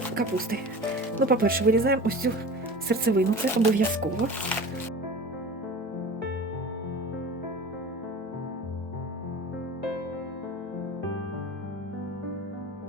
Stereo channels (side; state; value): both; normal; correlation 0.37